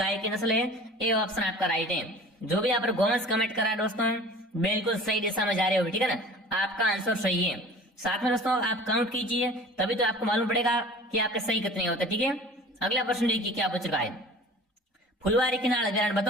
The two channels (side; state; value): both; normal; correlation 0.43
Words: की नस्ल है। ए ऑप्शन आपका राइट है। जो भी यहाँ पर गोवंश कमेंट करा है दोस्तों बिल्कुल सही दिशा में जा रहे हो, ठीक है ना, आपका आंसर सही है। साथ में दोस्तों आप काउंट कीजिए, तभी तो आपको मालूम पड़ेगा कि आपके सही कितने होते, ठीक है। अगला प्रश्न देखिए क्या पूछ रहा है, फुलवारी किनाल अभ्यारण्य,